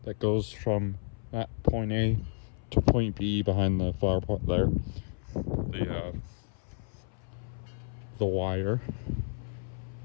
that goes from that point A to point B behind the flower pot there. The wire.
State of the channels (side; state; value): right; silent; 57 dB below the other